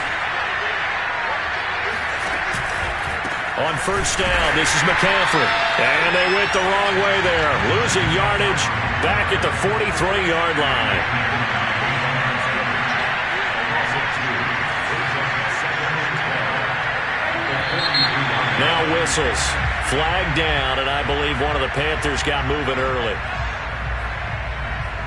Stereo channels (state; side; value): identical; both; correlation 1.00